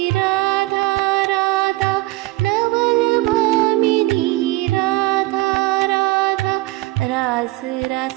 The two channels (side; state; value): left; quieter; 19.7 dB